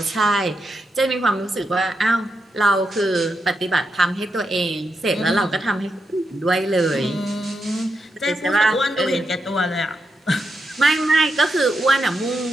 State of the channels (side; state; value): both; normal; correlation 0.84